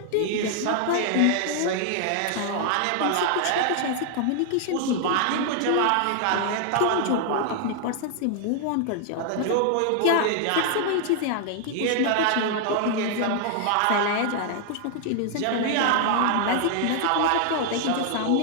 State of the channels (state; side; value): different; both; correlation 0.00